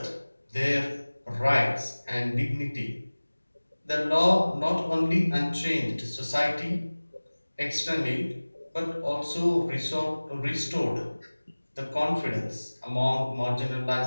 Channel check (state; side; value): inverted; both; correlation -1.00